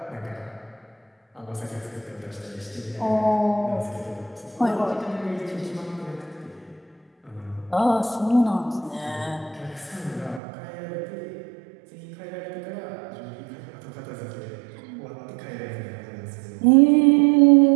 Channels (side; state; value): left; drops out; at 10.4 s